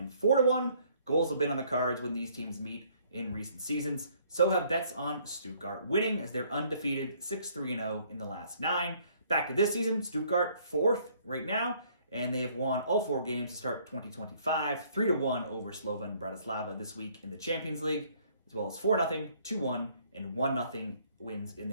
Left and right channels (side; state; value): both; inverted; correlation -0.62